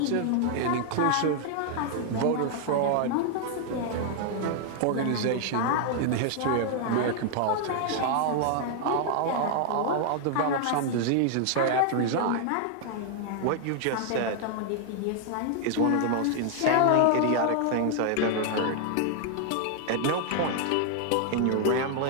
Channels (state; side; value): different; both; correlation 0.00